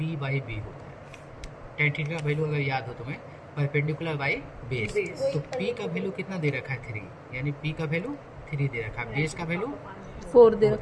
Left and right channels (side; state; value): both; identical; correlation 1.00